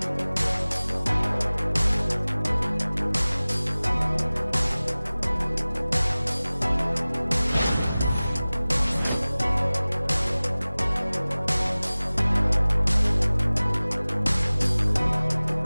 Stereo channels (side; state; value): both; inverted; correlation -0.99